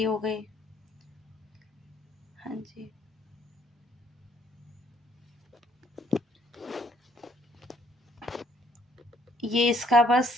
हो गई। हाँ जी, ये इसका बस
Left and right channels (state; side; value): normal; both; correlation 0.66